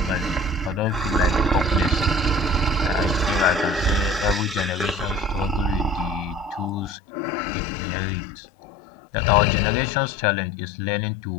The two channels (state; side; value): drops out; right; at 7.0 s